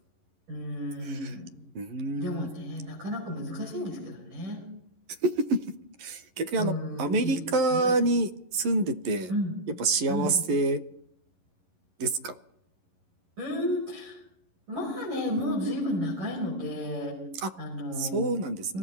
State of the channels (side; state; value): left; late; 11 ms